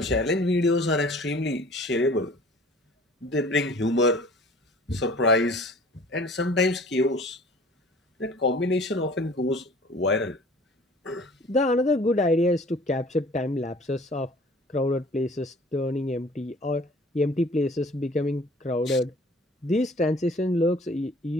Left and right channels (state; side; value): normal; both; correlation 0.49